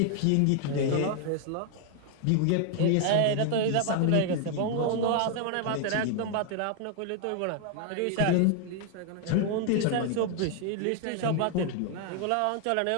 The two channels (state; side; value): different; both; correlation 0.00